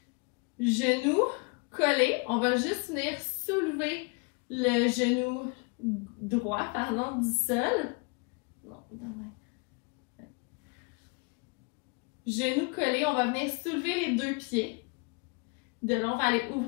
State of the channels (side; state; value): right; quieter; 31.8 dB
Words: Genoux collés. On va juste venir soulever le genou droit, du sol. Genoux collés, on va venir soulever les deux pieds. De là, on va aller